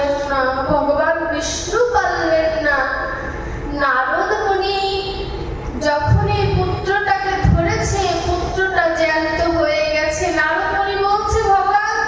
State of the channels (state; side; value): identical; both; correlation 1.00